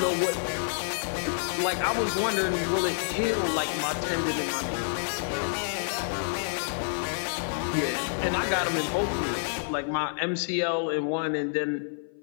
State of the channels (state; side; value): silent; right; 55 dB below the other